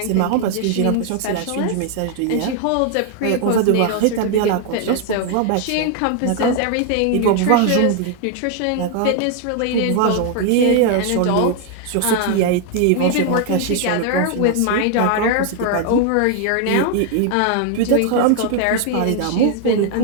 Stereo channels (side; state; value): both; different; correlation 0.00